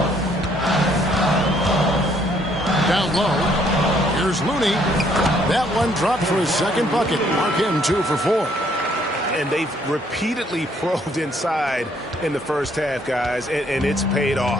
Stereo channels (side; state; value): both; normal; correlation 0.66